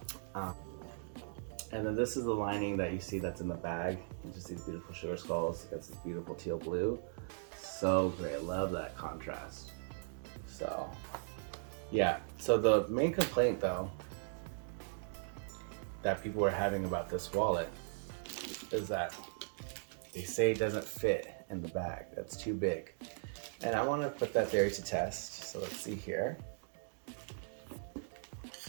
And then this is the lining that you see that's in the bag. You just see these beautiful sugar skulls. It gets this beautiful teal blue. So great, I love that contrast. So, yeah. So the main complaint though, that people were having about this wallet is that they say it doesn't fit in the bag. That's too big. And I want to put that theory to test. So let's see here.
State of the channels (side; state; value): left; silent; digital silence